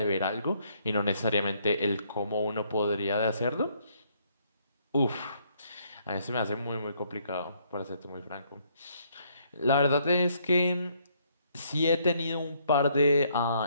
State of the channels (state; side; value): inverted; both; correlation -0.69